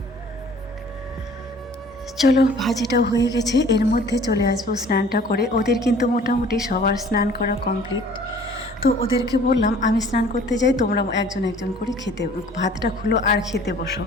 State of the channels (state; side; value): normal; both; correlation 0.51